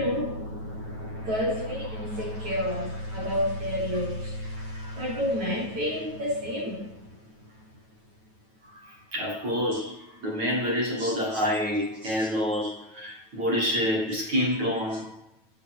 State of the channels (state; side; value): late; left; 9.2 ms